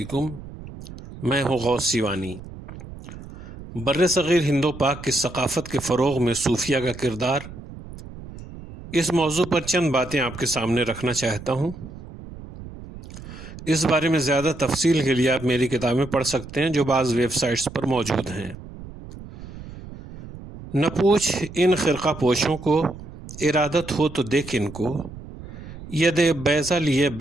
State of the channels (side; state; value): right; noise; rumble, 14 dB below the sound